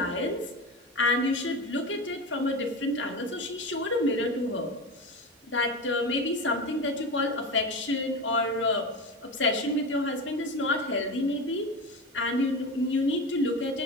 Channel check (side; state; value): both; normal; correlation 0.24